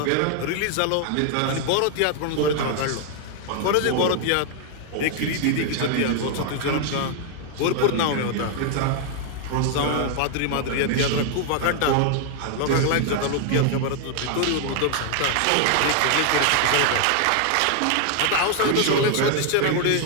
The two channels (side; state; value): both; different; correlation 0.00